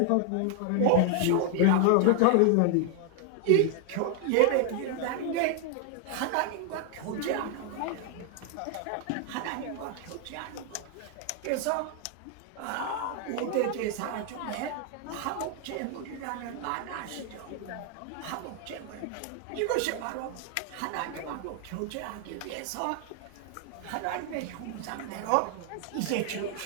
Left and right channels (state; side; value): different; both; correlation 0.00